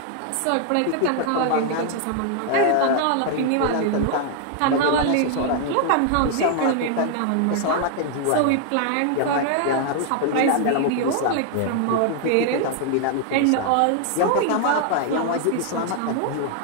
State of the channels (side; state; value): both; different; correlation 0.00